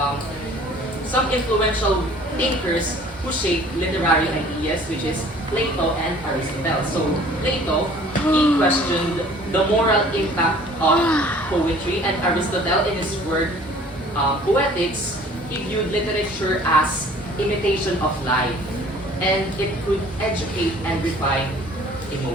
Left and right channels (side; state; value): both; normal; correlation 0.51